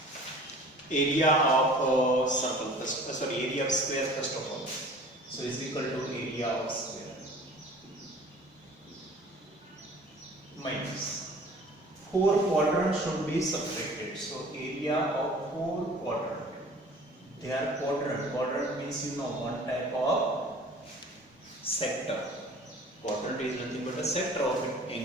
Area of circle first, area of square first of all. So is equal to area of square minus 4 quadrants should be subtracted. So area of 4 quadrant. They are quadrant. Quadrant means one type of sector. Quadrant is nothing but a sector of an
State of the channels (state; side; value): normal; both; correlation 0.46